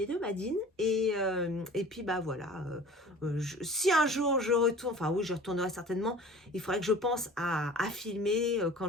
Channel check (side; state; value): both; normal; correlation 0.43